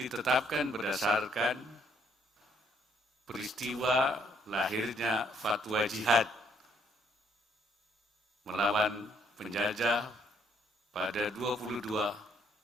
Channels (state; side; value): normal; both; correlation 0.68